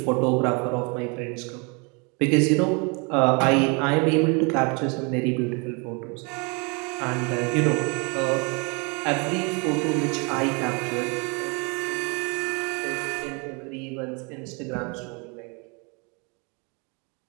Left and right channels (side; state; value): left; quieter; 32.1 dB